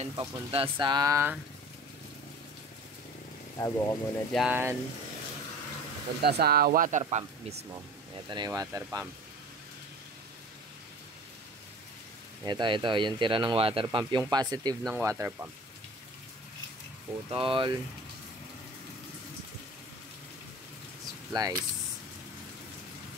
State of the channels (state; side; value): normal; both; correlation 0.41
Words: Papunta sa... Tago ko muna dyan. Papunta sa water pump mismo. Ito na yung water pump. Ito, yung tira ng water pump, yung positive ng water pump. Putol. Splice.